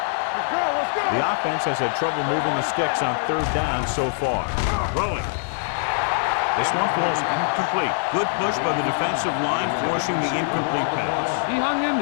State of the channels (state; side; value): silent; right; 63 dB below the other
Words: Let's go. The offense has had trouble moving the sticks on 3rd down so far. Throwing. This one falls incomplete. Good push by the defensive line, forcing the incomplete pass. He hung in